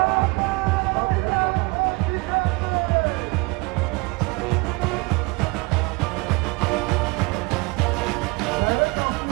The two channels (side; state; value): left; quieter; 26.5 dB